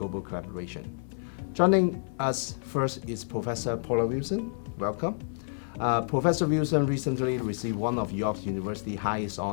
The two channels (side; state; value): right; silent; 58 dB below the other